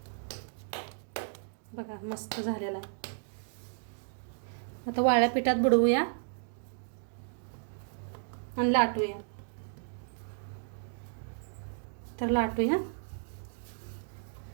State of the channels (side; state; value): left; silent; digital silence